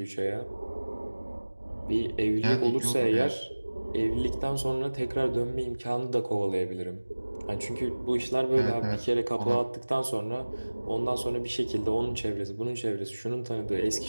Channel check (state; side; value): inverted; both; correlation -1.00